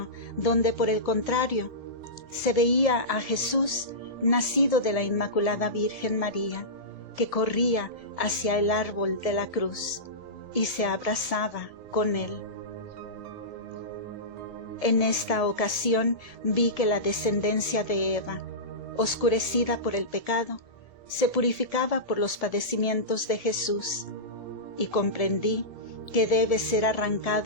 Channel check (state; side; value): late; right; 1.8 ms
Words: donde, por el contrario, se veía a Jesús, nacido de la Inmaculada Virgen María, que corría hacia el árbol de la cruz y se abrazaba con él. En esta ocasión vi que la descendencia de Eva, oscurecida por el pecado, se purificaba por los padecimientos de Jesús, y comprendí que debe ser